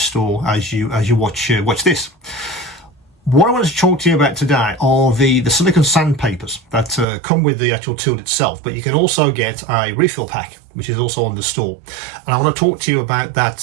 as you watch this. What I want to talk to you about today are the silicone sandpapers that come with the actual tool itself, but you can also get a refill pack, which is also on the store. And I want to talk to you about that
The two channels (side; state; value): left; drops out; at 7.1 s